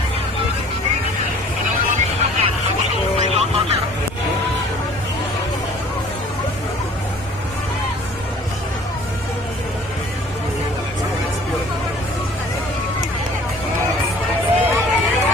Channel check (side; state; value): both; normal; correlation 0.51